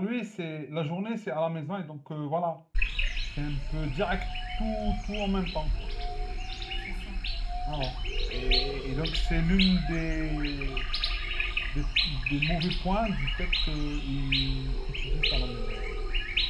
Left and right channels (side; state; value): both; identical; correlation 1.00